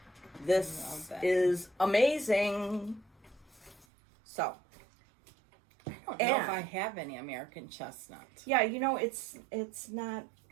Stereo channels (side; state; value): left; drops out; at 3.9 s